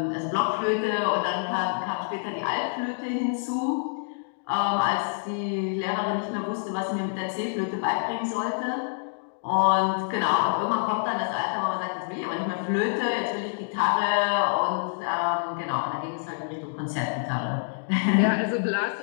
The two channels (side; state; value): right; silent; digital silence